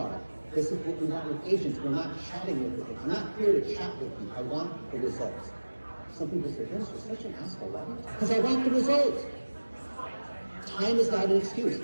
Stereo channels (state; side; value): inverted; both; correlation -1.00